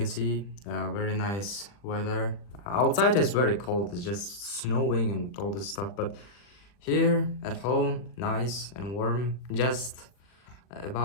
see, very nice weather. Outside is very cold, it's just snowing and all this stuff, but here at home, nice and warm. Just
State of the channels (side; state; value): right; late; 40 ms